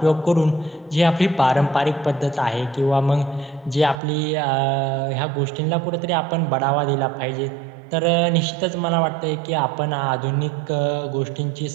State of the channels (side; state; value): left; drops out; at 4.0 s